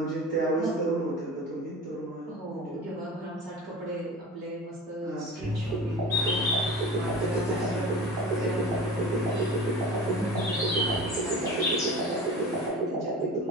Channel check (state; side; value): normal; both; correlation 0.35